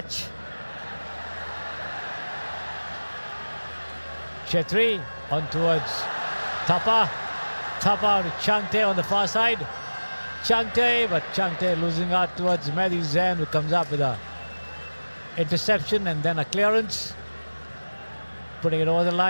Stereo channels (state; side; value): inverted; both; correlation -1.00